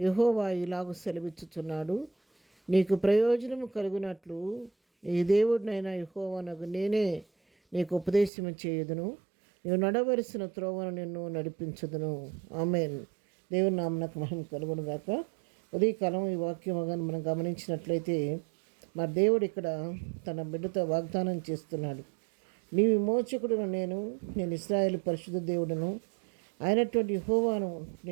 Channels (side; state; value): left; drops out; at 8.3 s